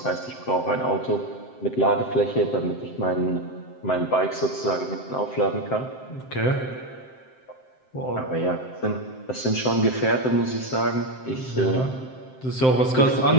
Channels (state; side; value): late; right; 7.7 ms